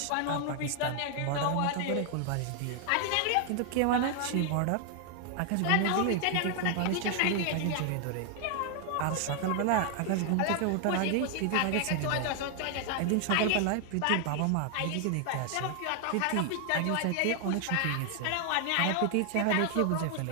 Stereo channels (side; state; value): both; different; correlation 0.00